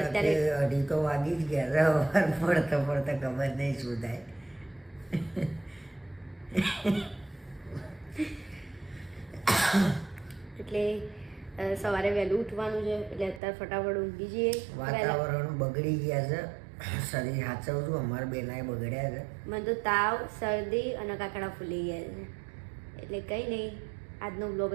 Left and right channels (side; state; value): left; drops out; at 13.4 s